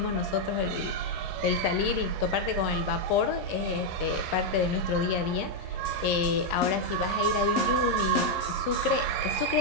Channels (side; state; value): both; normal; correlation 0.00